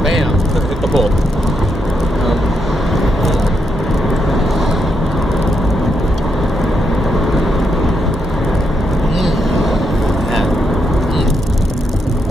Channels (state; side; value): normal; both; correlation 0.81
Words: hit the pole.